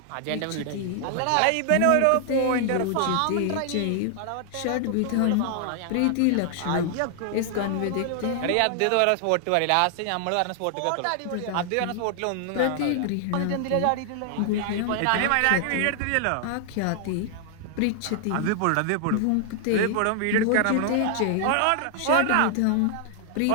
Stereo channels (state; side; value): different; both; correlation 0.00